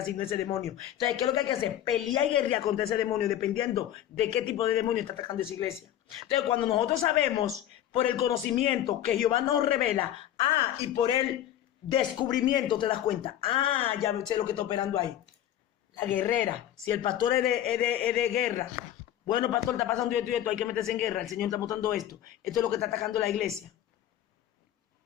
ese demonio. Entonces, ¿qué es lo que hay que hacer? Pelear y guerrear contra ese demonio dependiendo de qué tipo de demonio está atacando esa iglesia. Entonces, cuando nosotros sabemos por el conocimiento que Jehová nos revela, y por el descubrimiento te das cuenta, ya sé lo que está operando ahí. La guerrera, si el pastor es de guerra, bueno, pastor, está pasando esto y esto, hay que meterse en guerra, el Señor está mostrando esto. Esto es lo que está atacando la iglesia.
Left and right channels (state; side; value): quieter; right; 11.8 dB